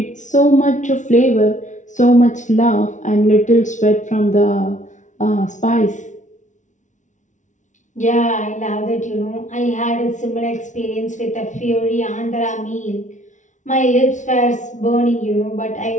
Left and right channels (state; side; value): late; right; 0.36 ms